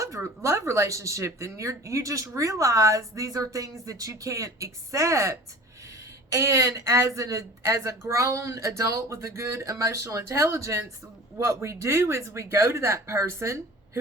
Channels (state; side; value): normal; both; correlation 0.41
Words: relationship and you just realize these are things that you can't accept. And as a grown adult with a good emotional intelligence, what we do is we go to that person